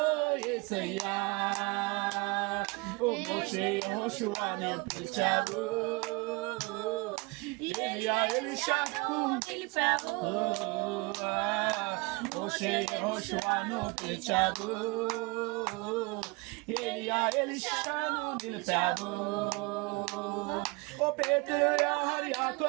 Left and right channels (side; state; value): left; quieter; 27.2 dB